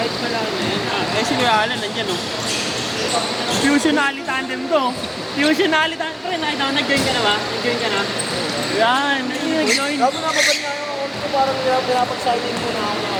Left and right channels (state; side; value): identical; both; correlation 1.00